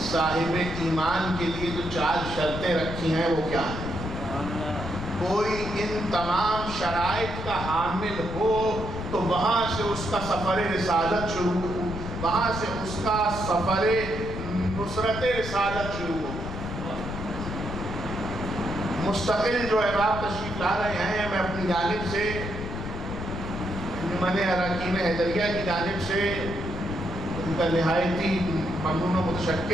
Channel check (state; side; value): noise; left; rumble, 7 dB below the sound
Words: صاحب ایمان کے لیے جو 4 شرطیں رکھی ہیں وہ کیا ہیں؟ کوئی ان تمام شرائط کا حامل ہو تو وہاں سے اس کا سفر رسالت شروع ہو، وہاں سے اس کا سفر نصرت رسالت شروع ہو. مستقل جو احباب تشریف لا رہے ہیں، میں اپنی جانب سے انجمن اراکین حیدریہ کی جانب سے ان کا نہایتی ممنون و